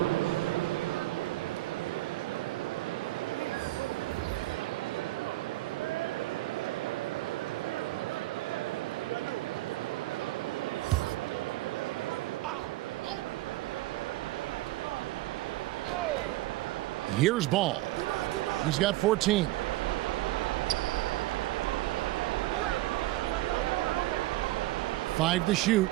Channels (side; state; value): left; quieter; 17.7 dB